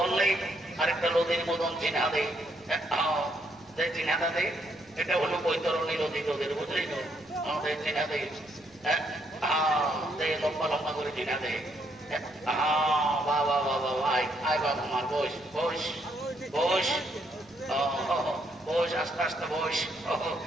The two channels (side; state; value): right; noise; rumble, 29 dB below the sound